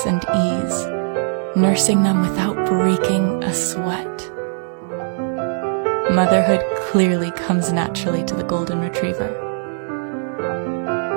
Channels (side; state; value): left; silent; digital silence